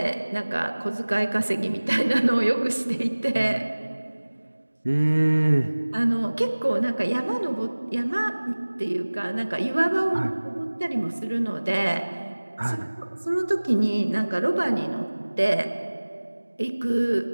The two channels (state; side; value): inverted; both; correlation -1.00